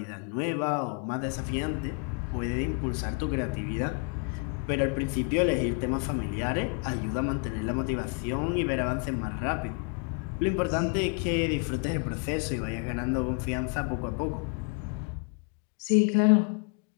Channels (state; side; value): quieter; right; 33.8 dB